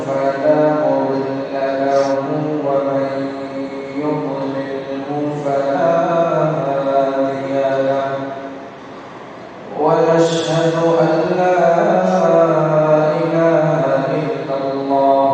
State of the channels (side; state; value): both; identical; correlation 1.00